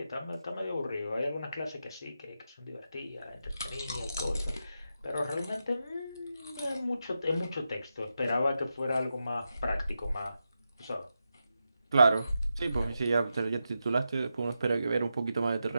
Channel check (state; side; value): inverted; both; correlation -0.88